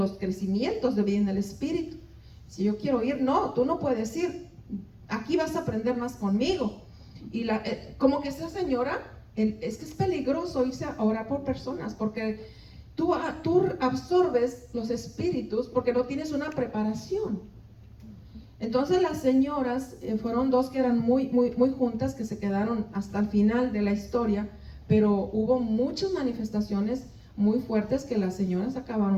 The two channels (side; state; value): both; identical; correlation 1.00